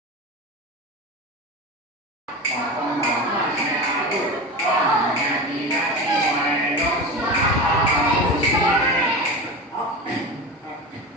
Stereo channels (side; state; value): both; normal; correlation 0.27